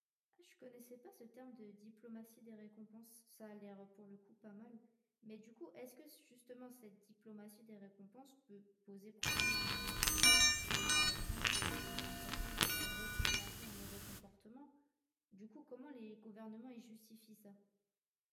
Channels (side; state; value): both; identical; correlation 1.00